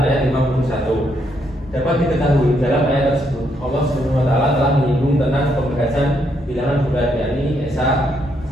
ayat 51. Dapat diketahui dalam ayat tersebut Allah Subhanahu wa Ta'ala telah menyinggung tentang pembahasan bilangan bulat, yakni Esa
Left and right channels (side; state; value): both; normal; correlation 0.75